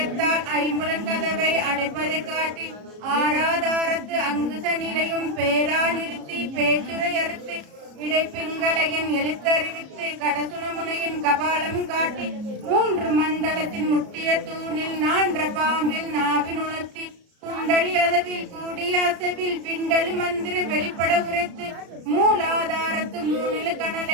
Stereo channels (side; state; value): left; late; 33 ms